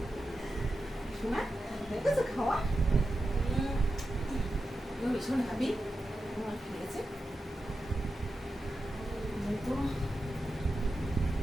শোনা দেখেছো খাওয়া ভীষণ হ্যাপি আমার খেয়েছে।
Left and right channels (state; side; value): normal; both; correlation 0.91